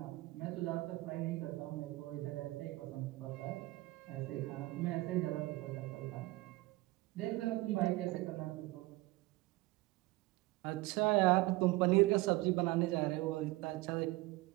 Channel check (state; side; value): quieter; left; 20.4 dB